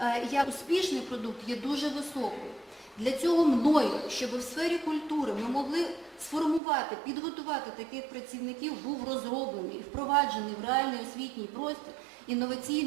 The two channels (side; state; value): left; drops out; at 6.6 s